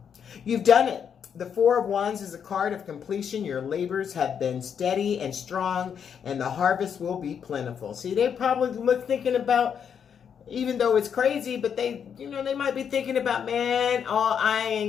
You've done it. The Four of Wands is a card of completion. Your labors have been steady and strong, and the harvest will be plentiful. See, they probably thinking about, even though it's crazy, but they might be thinking about, man,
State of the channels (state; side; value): quieter; right; 7.6 dB